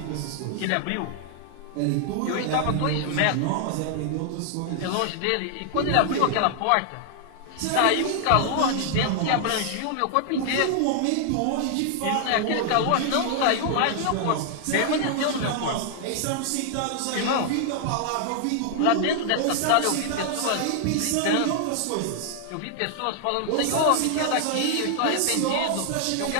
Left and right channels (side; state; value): both; different; correlation 0.00